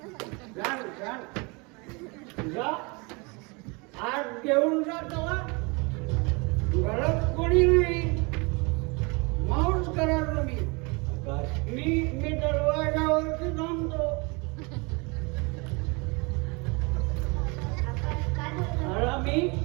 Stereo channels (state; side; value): quieter; left; 28.9 dB